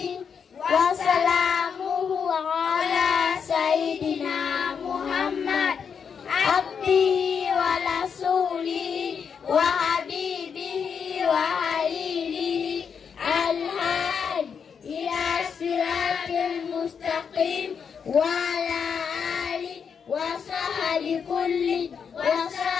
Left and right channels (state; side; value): quieter; right; 6.7 dB